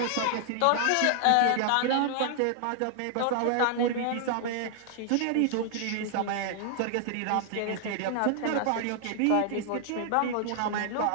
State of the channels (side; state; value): both; different; correlation 0.00